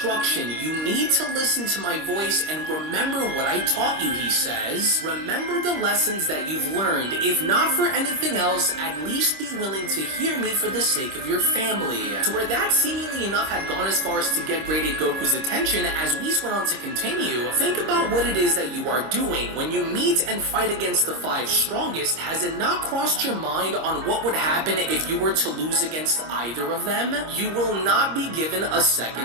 You need to listen to my voice and remember what I taught you," he says. "Remember the lessons that you've learned. If not for anything else, at least be willing to hear me for the sake of your family." To where that seemingly enough had gone as far as to get Great Ape Goku's attention, as Whis went on to continue, "Think about what it is that you are doing. When you meet and fight against the 5 strongest, has it not crossed your mind on what would happen if you were to lose against either of them? You will not be given a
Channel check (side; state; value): left; late; 26 ms